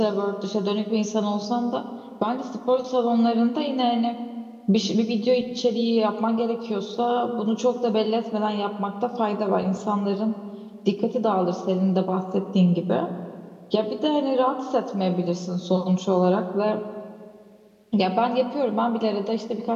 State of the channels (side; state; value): both; identical; correlation 1.00